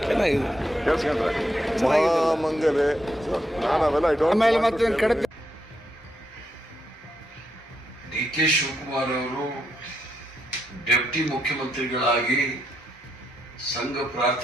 ಕೇಳಿಸ್ಕೊಂಡ್ರೆ ಮಹಾಮಂಗಲೆ. ಡಿ ಕೆ ಶಿವಕುಮಾರ್ ಅವರು ಡೆಪ್ಟಿ ಮುಖ್ಯಮಂತ್ರಿಗಳಾಗಿ ಸಂಘ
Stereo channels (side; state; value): both; normal; correlation 0.80